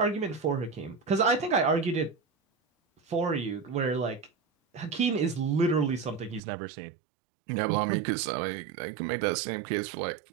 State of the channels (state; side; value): drops out; left; at 6.4 s